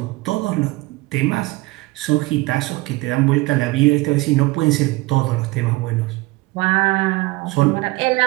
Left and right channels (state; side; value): quieter; left; 21.9 dB